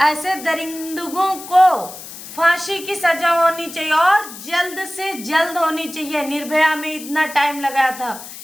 दरिंदों को फांसी की सजा होनी चाहिए और जल्द से जल्द होनी चाहिए। निर्भया में इतना टाइम लगा था,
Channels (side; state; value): left; noise; hiss, 13 dB below the sound